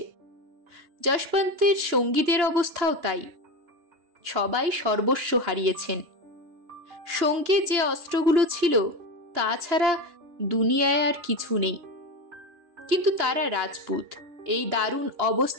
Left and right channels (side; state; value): left; late; 2.9 ms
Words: যশবন্তের সঙ্গীদের অবস্থাও তাই, সবাই সর্বস্ব হারিয়েছেন। সঙ্গে যে অস্ত্রগুলো ছিল তাছাড়া দুনিয়ায় আর কিছু নেই। কিন্তু তারা রাজপুত, এই দারুণ